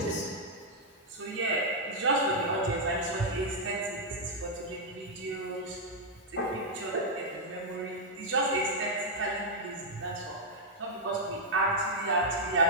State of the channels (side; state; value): both; normal; correlation -0.04